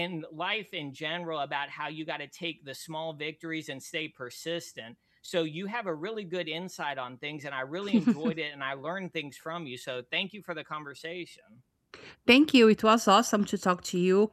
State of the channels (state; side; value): identical; both; correlation 1.00